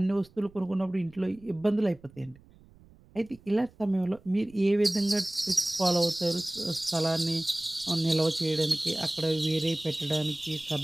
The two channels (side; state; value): right; noise; rumble, 26 dB below the sound